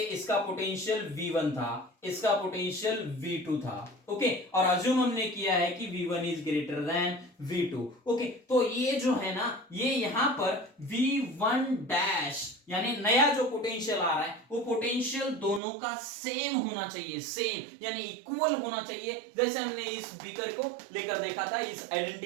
इसका पोटेंशियल V1 था, इसका पोटेंशियल V2 था। ओके, और अज्यूम हमने किया है कि V1 is greater than V2। Okay, तो ये जो है ना, ये यहां पर V1 डैश यानी नया जो पोटेंशियल आ रहा है, वो पोटेंशियल दोनों का सेम होना चाहिए, सेम यानी इक्वल होना चाहिए। जैसे हमने इस बीकर को लेकर देखा था, इस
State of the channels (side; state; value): left; drops out; at 15.6 s